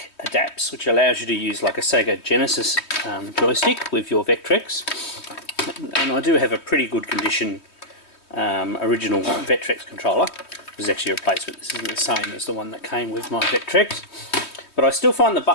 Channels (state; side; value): late; right; 3.2 ms